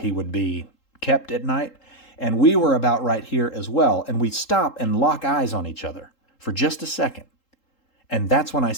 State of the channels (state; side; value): late; right; 3.8 ms